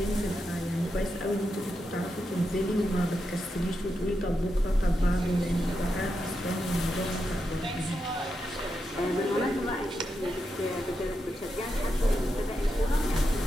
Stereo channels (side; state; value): both; normal; correlation 0.86